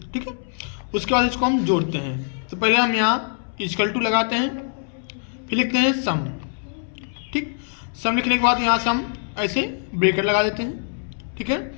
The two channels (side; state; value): right; silent; 63 dB below the other